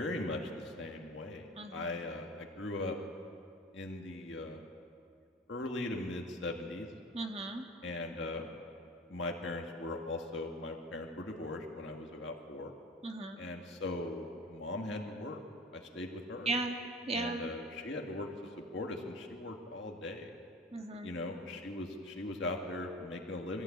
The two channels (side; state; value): both; normal; correlation 0.38